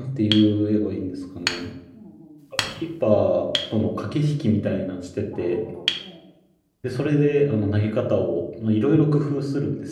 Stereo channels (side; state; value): both; identical; correlation 1.00